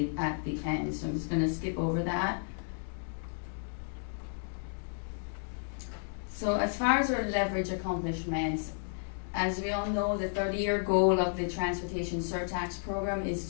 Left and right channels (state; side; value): silent; right; digital silence